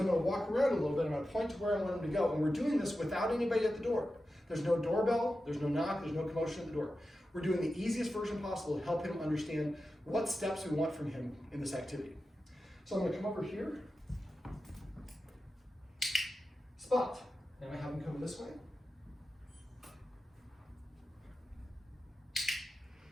going to walk around a little bit. I'm going to point to where I want him to go, and we're doing this without anybody at the door. There's no doorbell, there's no knock, there's no commotion at the door. We're doing the easiest version possible to help him understand what steps we want from him in this activity. So I'm going to come over here, spot. Now I have him come this way.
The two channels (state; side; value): normal; both; correlation 0.92